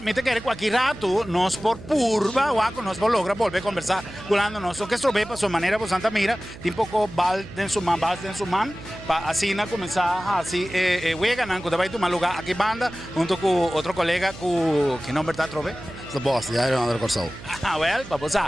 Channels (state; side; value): noise; right; hum, 16 dB below the sound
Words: me te quero aqui rato, nós por purva, ou nós por logra volver a conversar com nós, o que estou bem para sua maneira, por Santa Mira, tem pouco bal dentro do man, para assim começar assim, wega não, quando vai tomar lugar aqui banda, junto com outro colega, que nome está trove? The boss, the Iron Under Corsol. Ah, well, vamos